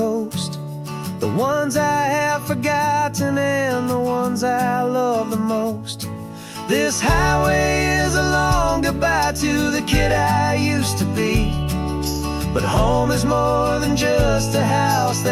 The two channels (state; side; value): identical; both; correlation 1.00